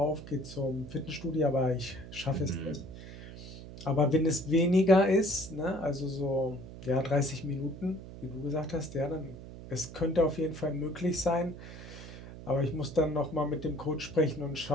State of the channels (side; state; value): right; noise; hum, 13 dB below the sound